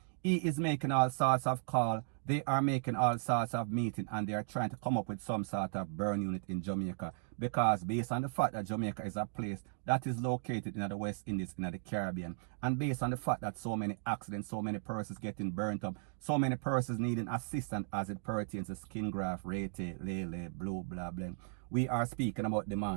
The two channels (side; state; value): left; silent; digital silence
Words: he is making all sorts of calls, they are making all sorts of meetings, and they are trying to come up with some sort of burn unit in Jamaica, because based on the fact that Jamaica is a place that is located in the West Indies, in the Caribbean, and based on the fact that so many accidents, so many persons getting burnt up, so many persons needing assistance as it pertains to skin graft, H3LL BRE, we are speaking about